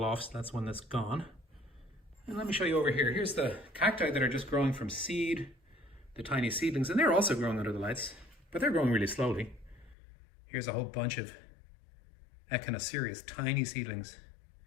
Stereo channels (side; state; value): right; drops out; at 10.0 s